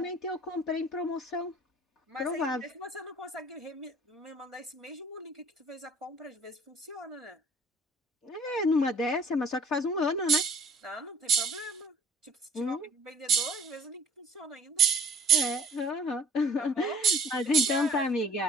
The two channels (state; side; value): normal; both; correlation 0.46